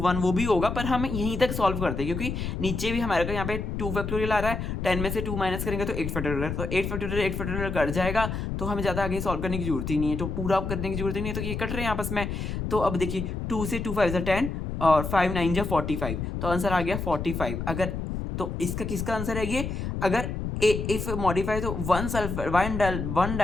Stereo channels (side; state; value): left; noise; rumble, 4 dB below the sound